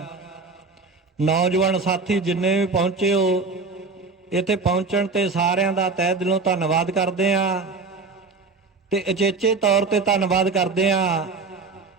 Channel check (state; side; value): quieter; left; 4.2 dB